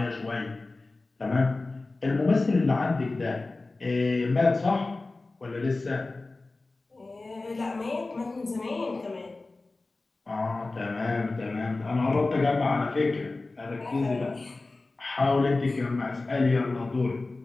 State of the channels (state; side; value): quieter; right; 3.3 dB